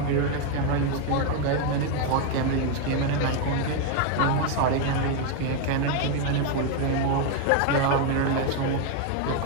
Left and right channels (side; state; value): both; different; correlation 0.01